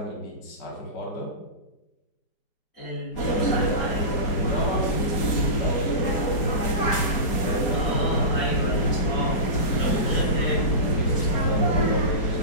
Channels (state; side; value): late; right; 4.3 ms